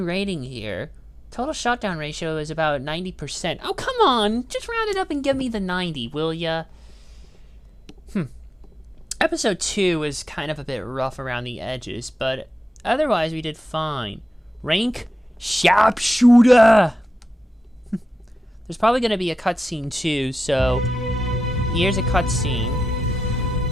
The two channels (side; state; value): both; normal; correlation 0.91